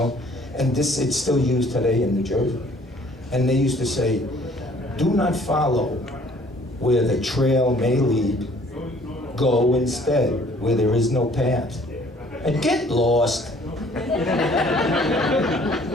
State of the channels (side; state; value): both; normal; correlation 0.57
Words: and this it's still used today in New Jersey. And they used to say, do not follow where the trail may lead. Go instead where there is no path. And get lost.